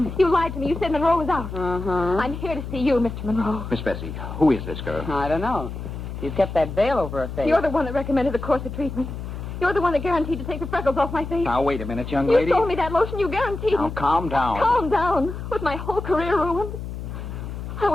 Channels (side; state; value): left; noise; hum, 8 dB below the sound